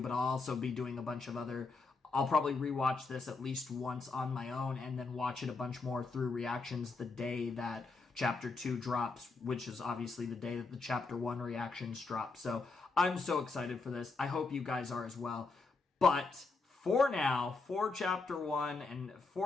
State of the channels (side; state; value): right; quieter; 4.0 dB